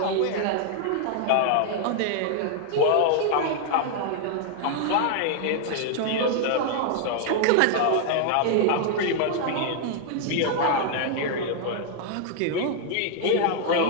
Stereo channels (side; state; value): both; different; correlation 0.00